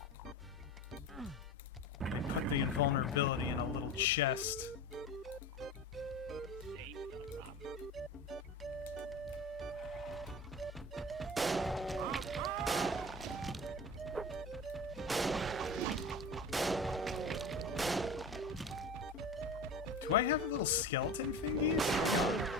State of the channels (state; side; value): normal; both; correlation 0.32